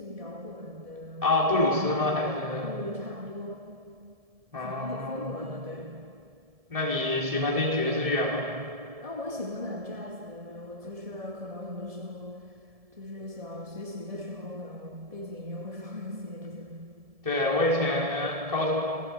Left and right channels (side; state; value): left; late; 1.7 ms